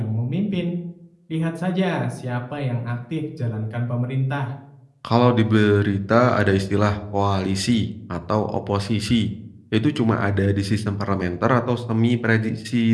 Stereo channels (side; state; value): both; identical; correlation 1.00